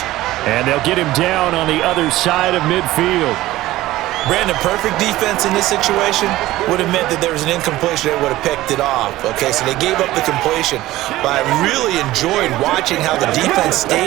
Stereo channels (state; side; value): quieter; left; 16.5 dB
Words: And they'll get him down on the other side of midfield. Brandon, perfect defense in this situation would have meant that there was an incompletion that would have picked it off. Okay, so they gave up the completion. But I really enjoyed watching how the defense